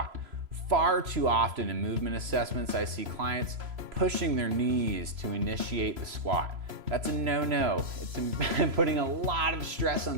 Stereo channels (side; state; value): left; late; 3.0 ms